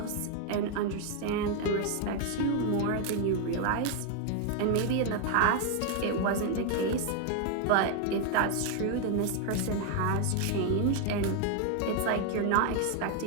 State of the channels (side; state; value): both; different; correlation 0.01